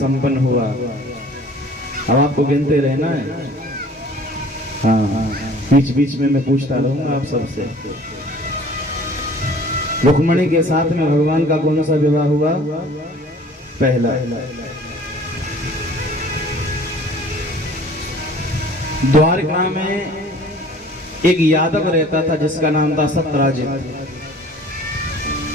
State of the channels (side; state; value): both; normal; correlation 0.50